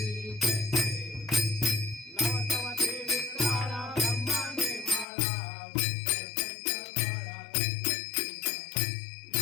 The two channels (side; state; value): right; drops out; at 5.1 s